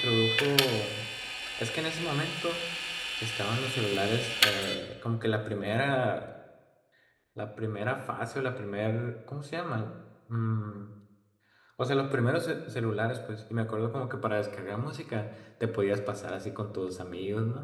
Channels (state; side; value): identical; both; correlation 1.00